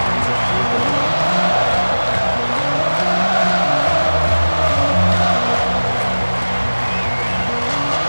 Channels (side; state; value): both; inverted; correlation -1.00